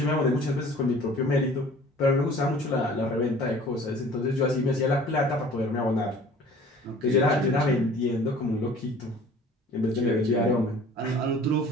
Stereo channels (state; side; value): normal; both; correlation 0.48